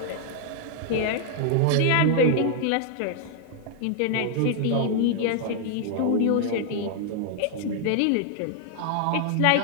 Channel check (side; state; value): both; different; correlation 0.00